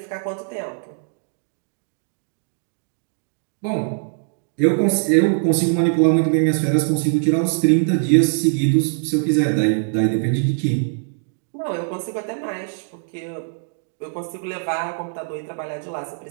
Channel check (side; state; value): left; silent; digital silence